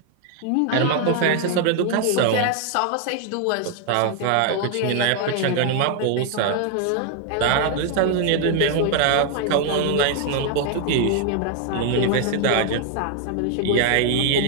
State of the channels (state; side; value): different; both; correlation 0.00